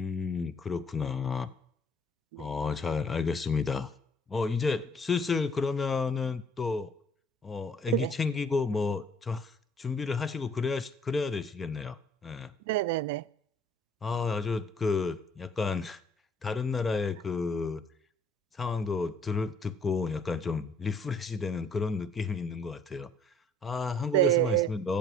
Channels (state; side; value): normal; both; correlation 0.60